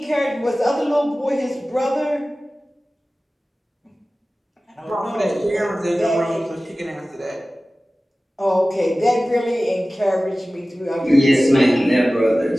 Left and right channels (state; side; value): normal; both; correlation 0.97